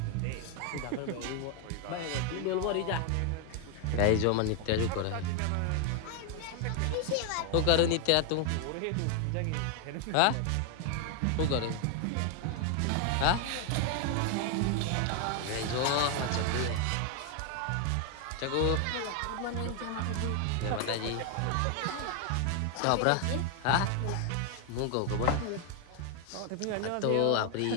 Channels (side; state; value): both; different; correlation 0.00